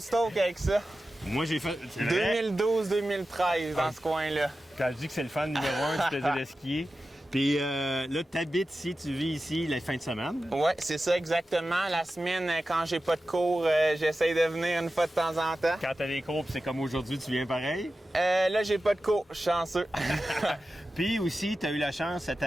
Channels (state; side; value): normal; both; correlation 0.93